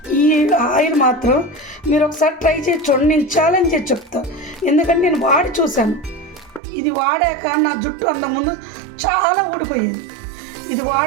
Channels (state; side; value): drops out; left; at 6.6 s